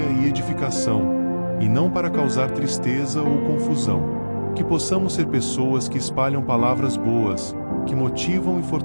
e edificação, e não para causar tristeza ou confusão. Que possamos ser pessoas que espalham palavras boas, que motivam e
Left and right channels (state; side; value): inverted; both; correlation -1.00